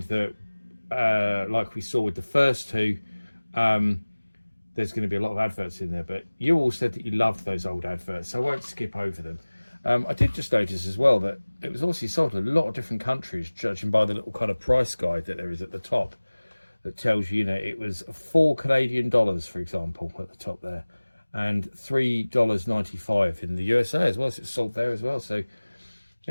that, like we saw with the first two, there's going to be a lot of adverts in there. But you all said that you loved those old adverts, so I won't skip over them. I did just notice as well that it was obviously sold in a lot of different countries, judging by the little kind of price guide that there is at the top that tells you, you know, it was $4 Canadian, for example, at the top there, and $3.95 in the USA as well. So it's sold there as well. So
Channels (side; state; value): both; inverted; correlation -1.00